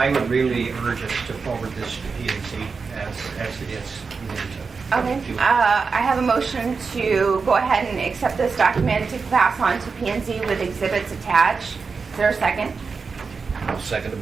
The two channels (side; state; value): left; quieter; 4.9 dB